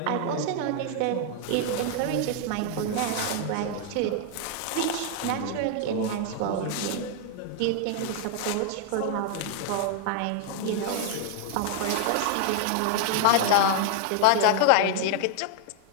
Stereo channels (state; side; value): different; both; correlation 0.00